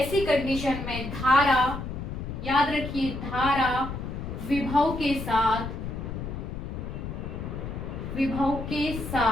कंडीशन में धारा, याद रखिए, धारा विभव के साथ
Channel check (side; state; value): left; noise; rumble, 6 dB below the sound